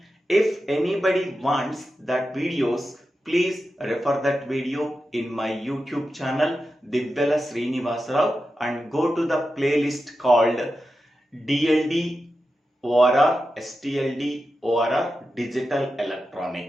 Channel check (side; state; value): both; normal; correlation 0.91